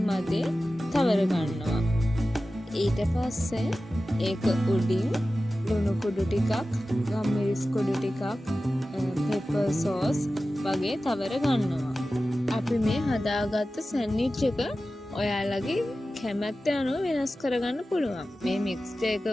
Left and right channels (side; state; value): both; normal; correlation 0.95